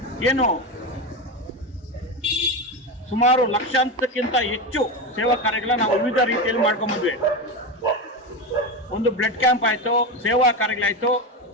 ಏನು ಸುಮಾರು ಲಕ್ಷಾಂತಕ್ಕಿಂತ ಹೆಚ್ಚು ಸೇವಾ ಕಾರ್ಯಗಳನ್ನ ನಾವು ವಿವಿಧ ರೀತಿಯಲ್ಲಿ ಮಾಡ್ಕೊಂಡ್ಬಂದ್ವಿ. ಒಂದು ಬ್ಲಡ್ ಕ್ಯಾಂಪ್ ಆಯಿತು, ಸೇವಾ ಕಾರ್ಯಗಳಾಯಿತು,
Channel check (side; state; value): both; normal; correlation 0.18